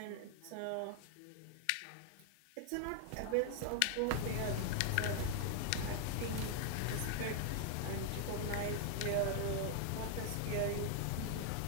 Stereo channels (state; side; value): different; both; correlation 0.00